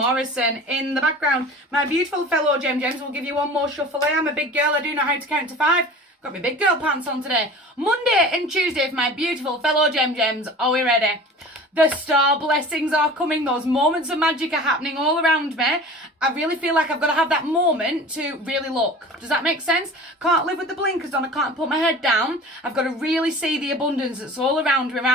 in the background. My beautiful fellow Gems will give you one more shuffle. I am a big girl, I do know how to count to 5. Got my big girl pants on today. Monday and Tuesday for my beautiful fellow Gems. Are we ready? The star blessings are coming. Those moments of magic are happening all around me. I really feel like I've got to have that moment to really look. Does that make sense? Can't live with the blinkers on. I can't put my head down. I've got to really see the abundance that's all around me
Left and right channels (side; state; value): both; normal; correlation 0.40